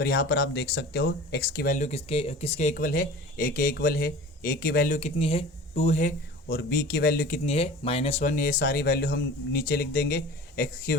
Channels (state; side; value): normal; both; correlation 0.39